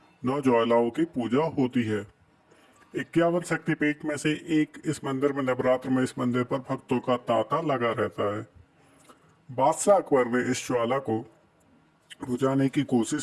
नौ ज्वालाओं की पूजा होती है। 51 शक्तिपीठ में से एक इस मंदिर में नवरात्र में इस मंदिर पर भक्तों का तांता लगा रहता है। बादशाह अकबर ने इस ज्वाला को बुझाने की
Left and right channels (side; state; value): both; identical; correlation 1.00